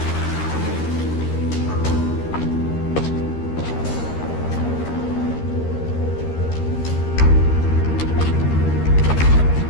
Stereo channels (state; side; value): late; right; 13 ms